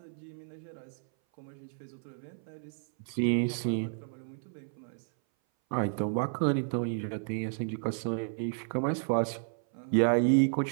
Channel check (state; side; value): silent; left; 56 dB below the other